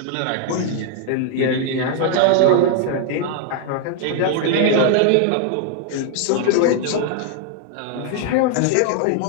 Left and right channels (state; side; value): different; both; correlation 0.00